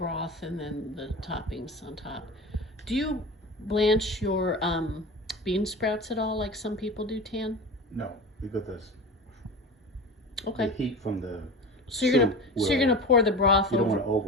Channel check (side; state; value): both; normal; correlation 0.32